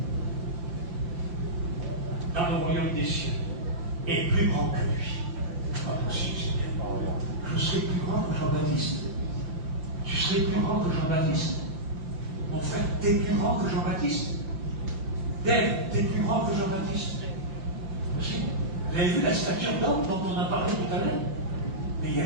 dans le royaume des cieux, est plus grand que lui. Pas possible, Seigneur. Je serai plus grand que Jean-Baptiste. Tu serais plus grand que Jean-Baptiste. Mon frère, t'es plus grand que Jean-Baptiste. Dave, t'es plus grand que Jean-Baptiste. Aussi. Vous avez vu la stature d'homme dont on a parlé tout à l'heure? Mais il y en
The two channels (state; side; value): late; left; 5.8 ms